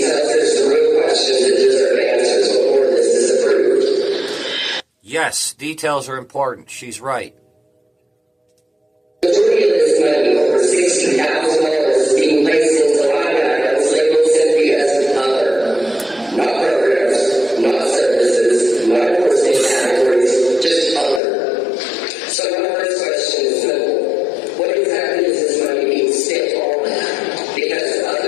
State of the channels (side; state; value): right; drops out; at 21.2 s